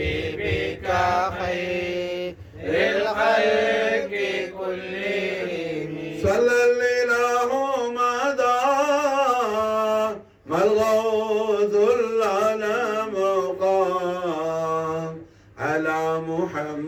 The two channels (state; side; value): identical; both; correlation 1.00